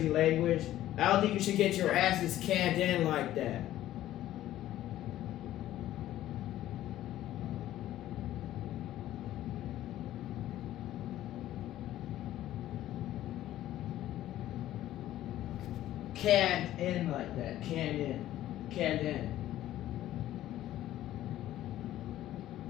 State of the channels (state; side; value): quieter; right; 13.6 dB